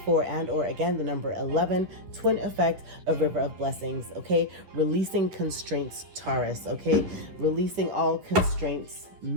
and or again the number 11, twin effect of River of Blessings. Okay. Releasing constraints, Taurus. Okay. Releasing all constraints.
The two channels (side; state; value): left; late; 11 ms